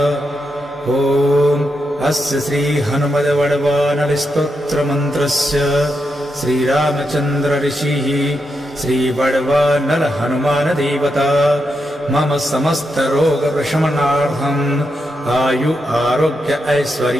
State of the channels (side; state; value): both; normal; correlation 0.84